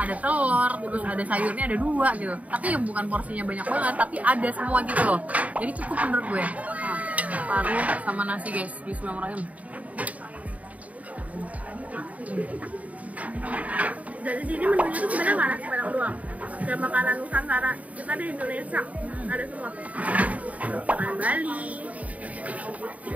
telur, terus ada sayurnya ada 2 gitu. Tapi bukan porsinya banyak banget, tapi ada semua gitu loh. Jadi cukup menurut gue. Paru sama nasi guys, bismillahirrahmanirrahim. Dari sini menunya tuh sebenarnya nggak nasi padang doang. Kayak makanan Nusantara kita di Indonesia ada semua. Makanan Bali,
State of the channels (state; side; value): late; left; 0.070 ms